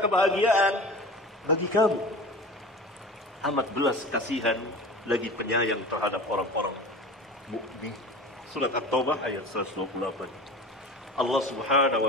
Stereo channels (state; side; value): normal; both; correlation 0.35